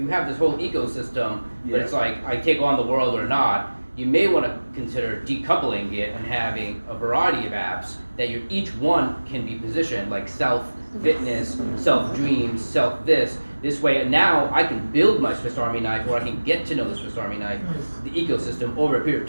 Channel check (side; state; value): both; inverted; correlation -1.00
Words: have this whole ecosystem, but it's like, I take on the world or not. You may want to consider decoupling it and having a variety of apps that each one can be positioned, like self-fitness, self-dreams, self-this. This way, now I can build my Swiss Army knife, or I can get to know the Swiss Army knife, the ecosystem over a period